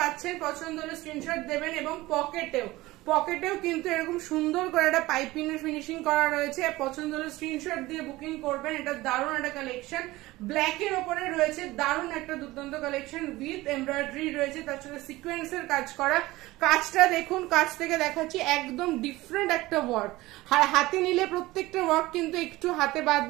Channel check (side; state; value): left; quieter; 18.9 dB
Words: পছন্দ হলে স্ক্রিনশট দেবেন। এবং পকেটেও কিন্তু এরকম সুন্দর করে একটা পাইপিং এর ফিনিশিং করা রয়েছে। পছন্দ হলে স্ক্রিনশট দিয়ে বুকিং করবেন। এটা দারুণ একটা কালেকশন, ব্ল্যাক এর উপরে রয়েছে। দারুণ একটা দুর্দান্ত কালেকশন উইথ এমব্রয়ডারি রয়েছে, তার সাথে সিকোয়েন্সের কাজ করা। কাজটা দেখুন, কাজ থেকে দেখাচ্ছি, একদম ডিফারেন্ট একটা ওয়ার্ক। হাতে নিলে প্রত্যেকটা ওয়ার্ক কিন্তু একটু হাতে